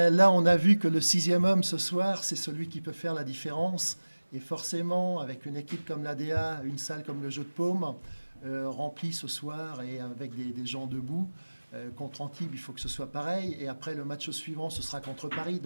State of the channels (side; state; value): both; inverted; correlation -1.00